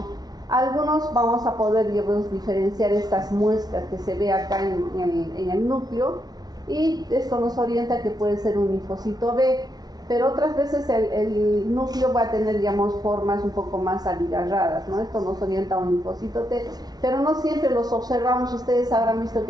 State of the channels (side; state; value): left; late; 0.19 ms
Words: Algunos vamos a poder, digamos, diferenciar estas muestras que se ve acá en el núcleo, y esto nos orienta que puede ser un linfocito B, pero otras veces el núcleo va a tener, digamos, formas un poco más abigarradas, ¿no? Esto nos orienta a un linfocito T, pero no siempre los observamos. Ustedes habrán visto